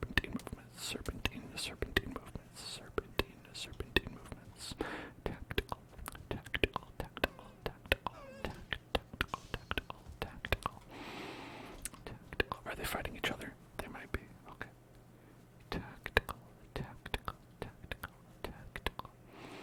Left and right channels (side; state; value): both; identical; correlation 1.00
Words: movements. Tactical. Are they fighting each other? They might be. Okay. Tactical.